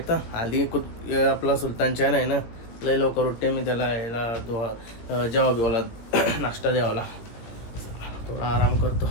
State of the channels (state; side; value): late; right; 17 ms